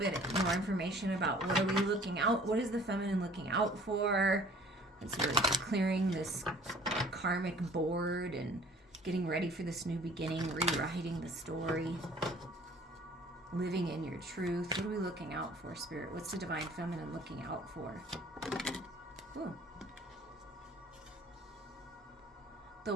more information about what are we looking out, what is the feminine looking out for, as we're clearing this karmic board and getting ready for this new beginning, rewriting the story, living in your truth. What are we looking out for, Spirit? What's the divine feminine looking out for? Ooh. The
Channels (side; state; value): both; normal; correlation 0.52